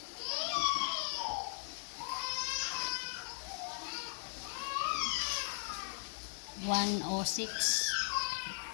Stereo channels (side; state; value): right; silent; 52 dB below the other